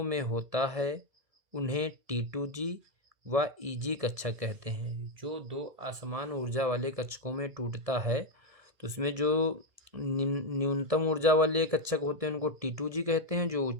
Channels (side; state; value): left; late; 1.7 ms